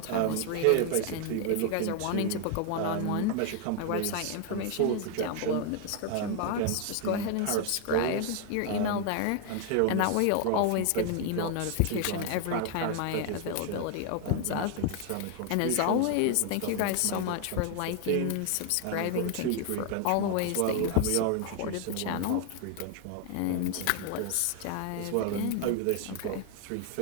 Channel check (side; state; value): both; different; correlation 0.00